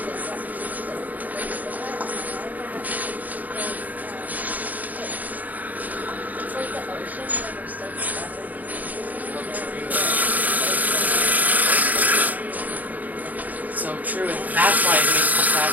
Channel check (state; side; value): late; left; 0.079 ms